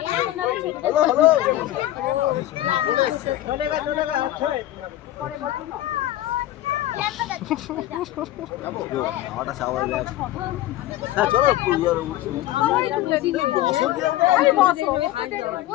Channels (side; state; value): right; quieter; 14.6 dB